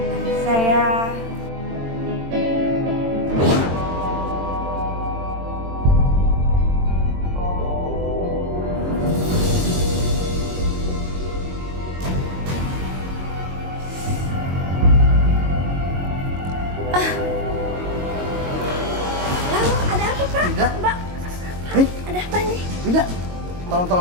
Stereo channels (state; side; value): late; left; 22 ms